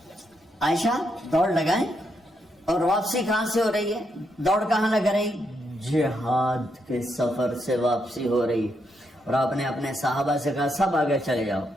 عائشہ دوڑ لگائیں. اور واپسی کہاں سے ہو رہی ہے؟ دوڑ کہاں لگ رہی؟ جہاد کے سفر سے واپسی ہو رہی. اور آپ نے اپنے صحابہ سے کہا سب آگے چلے جاؤ.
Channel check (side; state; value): both; normal; correlation 0.79